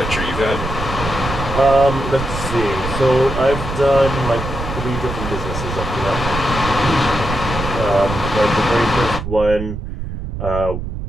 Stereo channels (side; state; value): right; noise; rumble, 6 dB below the sound